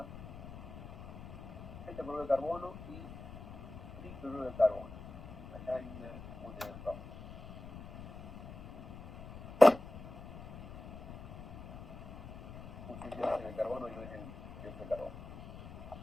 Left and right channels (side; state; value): left; noise; rumble, 12 dB below the sound